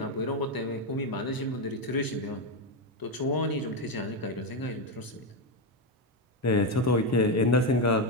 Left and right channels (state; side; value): normal; both; correlation 0.07